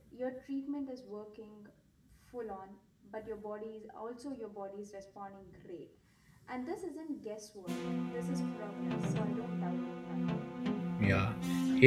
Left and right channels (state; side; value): identical; both; correlation 1.00